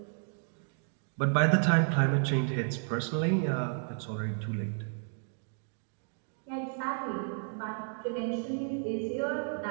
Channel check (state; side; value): silent; left; 56 dB below the other